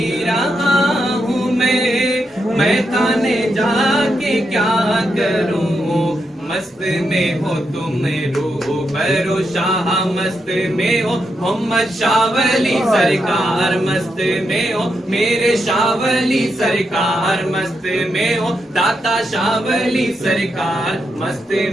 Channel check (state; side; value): normal; both; correlation 0.83